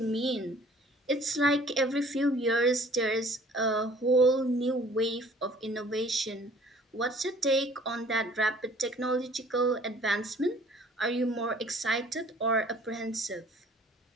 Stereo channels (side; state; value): both; normal; correlation 0.54